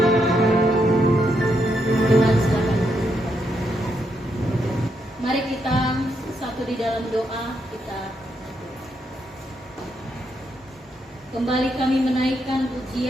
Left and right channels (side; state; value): both; normal; correlation 0.79